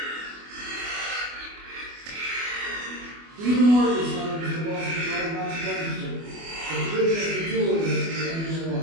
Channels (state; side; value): late; left; 24 ms